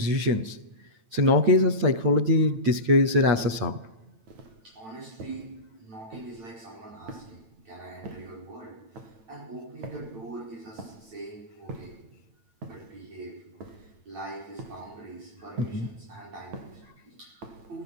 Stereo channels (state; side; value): late; left; 9.0 ms